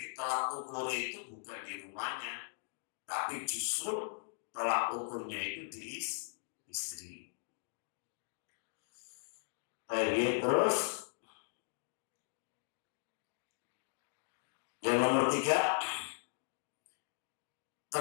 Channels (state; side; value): silent; right; digital silence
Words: tolak ukur itu bukan di rumahnya, tapi justru tolak ukurnya itu di istri. Baik, terus yang nomor 3,